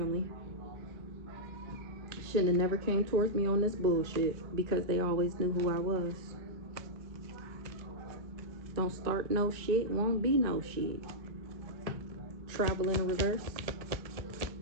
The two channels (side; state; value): left; late; 1.2 ms